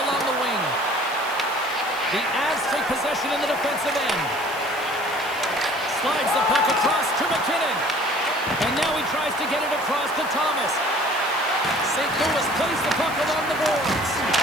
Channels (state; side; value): noise; right; hiss, 17 dB below the sound